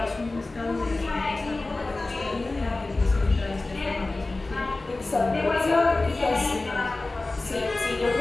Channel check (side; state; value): right; quieter; 3.2 dB